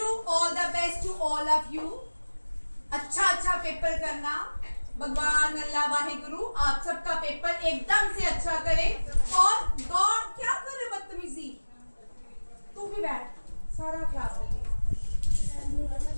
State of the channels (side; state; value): both; inverted; correlation -1.00